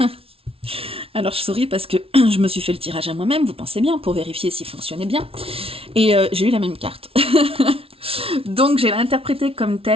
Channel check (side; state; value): left; late; 0.27 ms